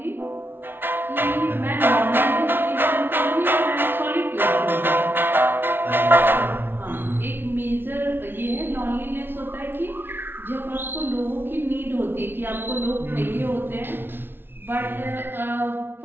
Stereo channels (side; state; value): left; late; 0.10 ms